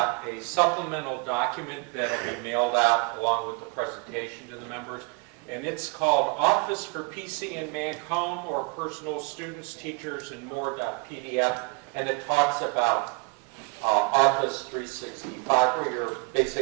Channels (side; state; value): left; quieter; 30.5 dB